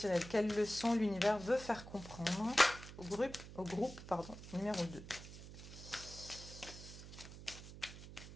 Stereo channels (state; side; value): noise; right; hum, 13 dB below the sound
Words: Quelle leçon l'univers veut faire comprendre au groupe numéro 2?